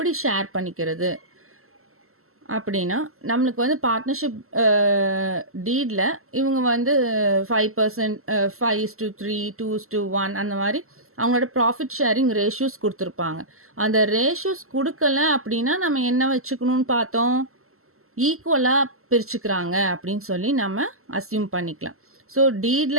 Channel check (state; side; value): late; left; 0.62 ms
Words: ஷேர் பண்ணிக்கிறது அப்படின்னா நம்மளுக்கு வந்து பார்ட்னர்ஷிப் டீடில் இவங்க வந்து 5%, 5:3, 2:1 அந்த மாதிரி அவங்களோட ப்ராஃபிட் ஷேரிங் ரேஷியோஸ் கொடுத்துருப்பாங்க. அந்த ரேஷியோஸ் கொடுக்கல அப்படின்னா நம்ம என்ன வச்சுக்கணும்னு பார்த்தோம்? ஈக்குவலாக பிரிச்சுக்கிறாங்க அப்படின்னு சொல்லி நம்ம அஸ்யூம் பண்ணிக்கலாம். ஸோ